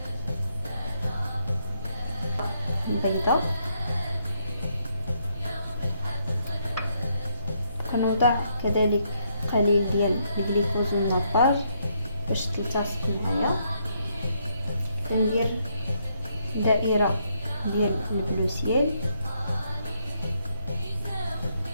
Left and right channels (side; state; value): both; inverted; correlation -0.75